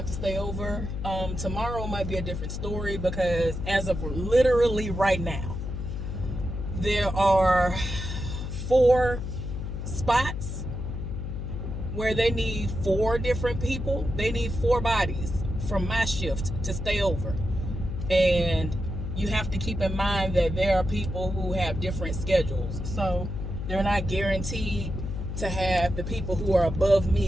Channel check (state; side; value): noise; left; hum, 5 dB below the sound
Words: to stay over. Tomorrow might be a different story because as of literally right now, there are 4 spots where they need 4 different people. They need 4 bodies from my shift to stay over. And you have to keep in mind that there are people who have different schedules. So they're not guaranteed to have the people who are above